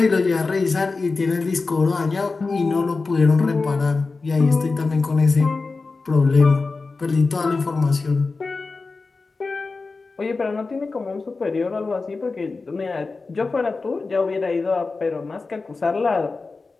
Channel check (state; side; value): quieter; right; 4.0 dB